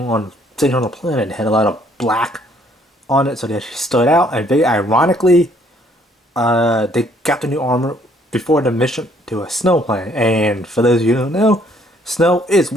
sitting on the planet, they had a lot of black on it, so they actually stood out. And very ironically, they got the new armor before the mission to a snow planet. And for those of you who don't know, snow is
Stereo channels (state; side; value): normal; both; correlation 0.64